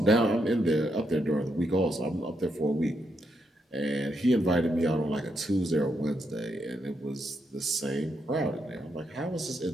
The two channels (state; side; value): normal; both; correlation 0.80